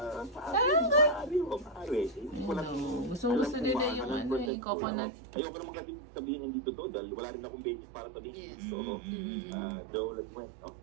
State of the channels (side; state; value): left; drops out; at 4.5 s